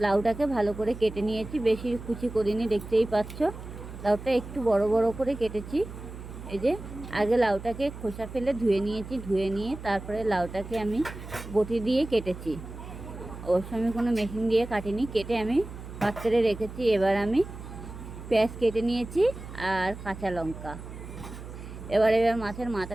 লাউটাকে ভালো করে কেটে নিয়েছি, বেশি কুচি করিনি, দেখতেই পাচ্ছ। লাউটা একটু বড় বড় করে কেটেছি। এই যে আগে লাউটাকে খোসা ফেলে ধুয়ে নিয়েছি, ধুয়ে নিয়ে তারপরে লাউটাকে আমি বটি দিয়ে কেটেছি। অবশ্য আমি কোনো মেশিন দিয়ে কাটিনি, কেটে আমি পাত্রে রেখেছি। এবার আমি পেঁয়াজ কেটে নিয়েছি আর কাঁচা লঙ্কা। এবার মাছের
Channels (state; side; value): noise; right; hum, 12 dB below the sound